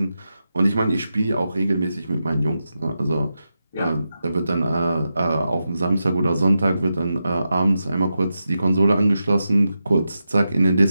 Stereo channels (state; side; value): inverted; both; correlation -0.89